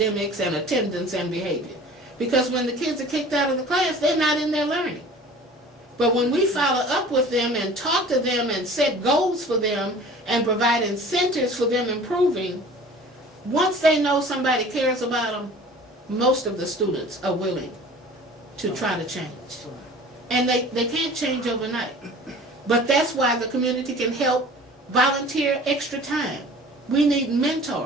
and attendance and behavior. Because when the kids are kicked out of the class, they're not in there learning. But when we follow up with them and talk to them and set goals for them and provide incentives for them improving, once they know somebody cares about them, most of the students are willing to try to change. And they can't change overnight. But that's why the community can help volunteer extra time. We need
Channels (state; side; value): normal; both; correlation 0.45